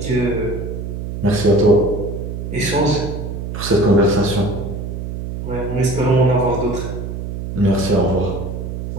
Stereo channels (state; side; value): noise; right; hum, 6 dB below the sound